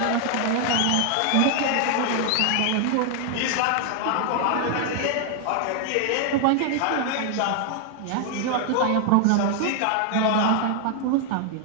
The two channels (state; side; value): different; both; correlation 0.00